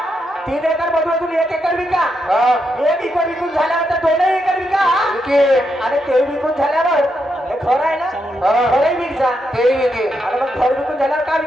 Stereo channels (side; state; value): both; normal; correlation 0.82